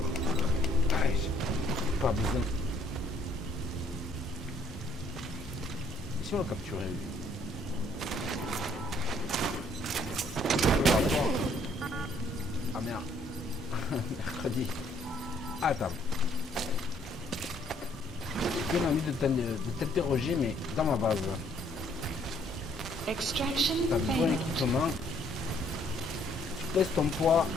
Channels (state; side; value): normal; both; correlation 0.64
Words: Allez, j'ai pas besoin. Et si on l'a capturé lui? Ah merde. Mercredi. Attends. J'ai bien envie de t'interroger, mais dans ma base. Extraction T'as le bon failed. équipement. Tu pèses ton poids.